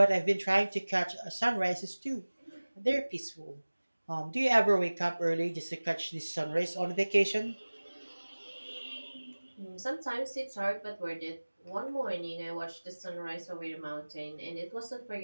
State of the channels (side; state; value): both; inverted; correlation -1.00